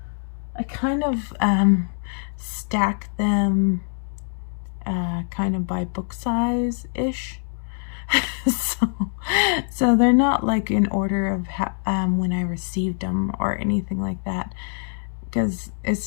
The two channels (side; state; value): right; silent; 63 dB below the other